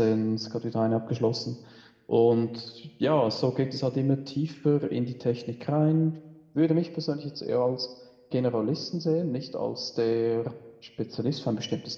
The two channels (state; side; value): identical; both; correlation 1.00